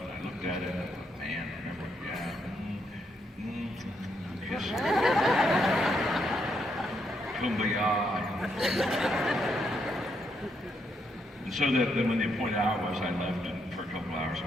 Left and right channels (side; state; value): both; normal; correlation 0.77